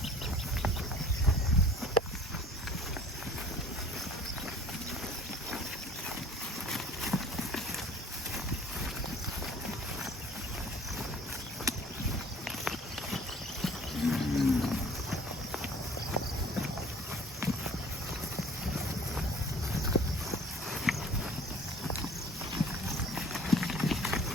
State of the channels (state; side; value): normal; both; correlation 0.50